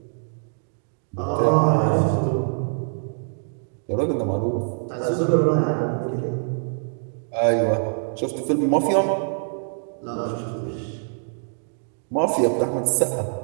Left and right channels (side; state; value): left; silent; digital silence